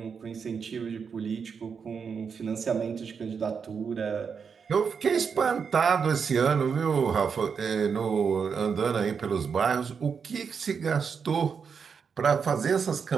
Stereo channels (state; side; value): quieter; left; 6.2 dB